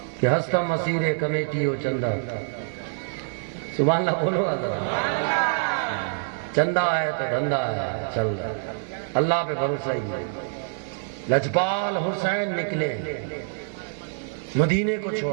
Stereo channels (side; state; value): left; silent; digital silence